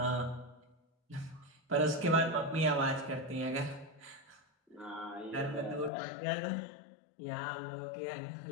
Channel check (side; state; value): right; drops out; at 5.9 s